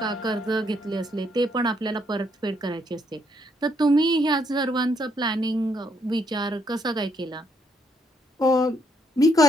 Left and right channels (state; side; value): normal; both; correlation 0.72